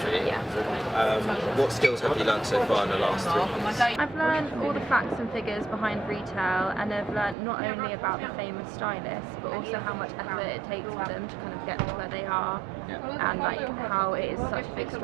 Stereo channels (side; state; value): left; drops out; at 7.4 s